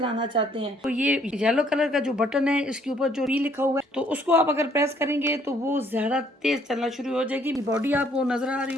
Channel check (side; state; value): both; normal; correlation 0.64